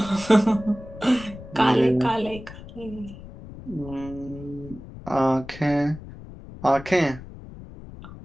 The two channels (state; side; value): noise; left; rumble, 15 dB below the sound